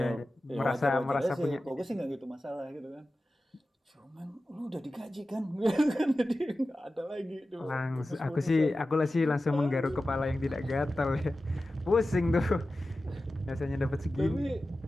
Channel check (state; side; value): normal; both; correlation 0.94